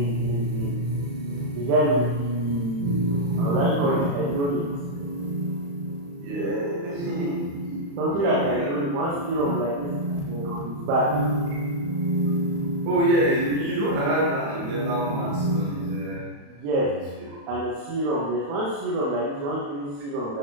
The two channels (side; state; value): left; late; 35 ms